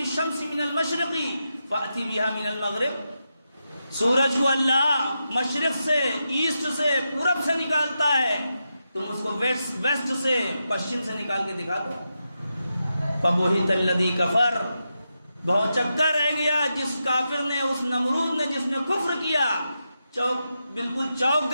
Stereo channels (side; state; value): both; inverted; correlation -0.87